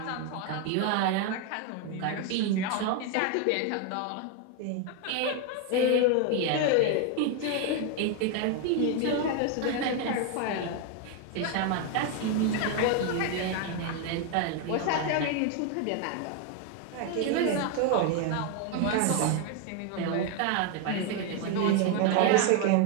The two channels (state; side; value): different; both; correlation 0.01